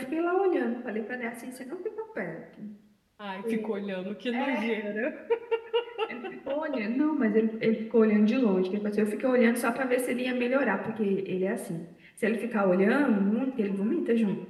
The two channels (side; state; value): both; identical; correlation 1.00